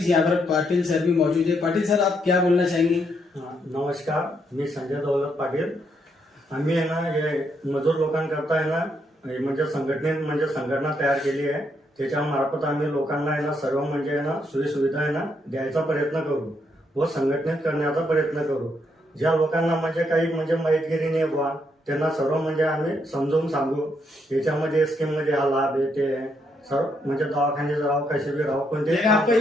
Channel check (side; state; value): both; normal; correlation 0.76